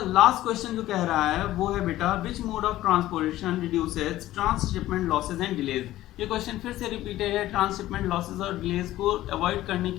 लास्ट क्वेश्चन जो कह रहा है वो है बेटा which mode of transportation reduces transshipment losses and delays. ये क्वेश्चन फिर से रिपीटेड है। ट्रांसशिपमेंट लॉसेज और डिलेज को अवॉइड करने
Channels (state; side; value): quieter; right; 15.1 dB